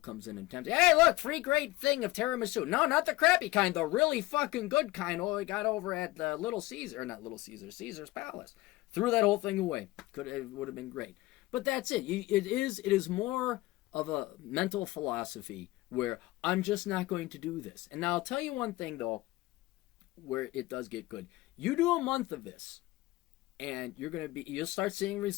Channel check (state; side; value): quieter; right; 19.3 dB